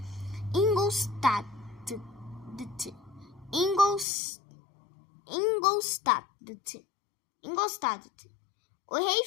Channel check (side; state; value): right; drops out; at 4.0 s